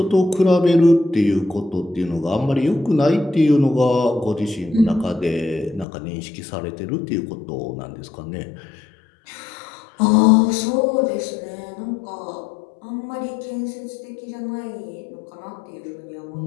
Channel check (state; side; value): drops out; right; at 5.9 s